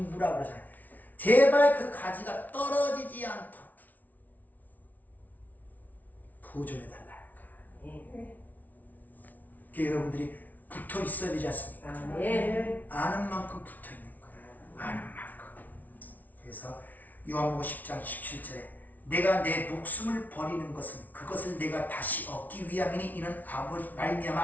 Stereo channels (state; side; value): late; right; 0.078 ms